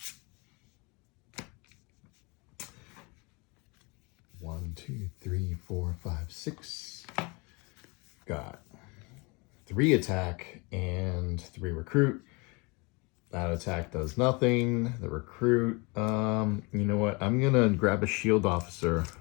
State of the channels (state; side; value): quieter; right; 28.5 dB